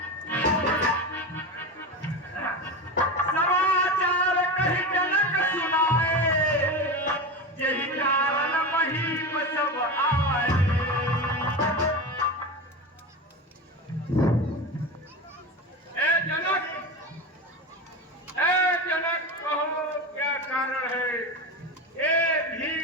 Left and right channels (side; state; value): both; normal; correlation 0.23